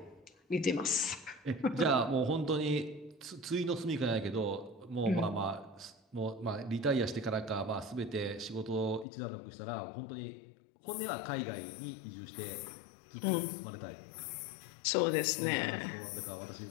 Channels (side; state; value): right; drops out; at 9.1 s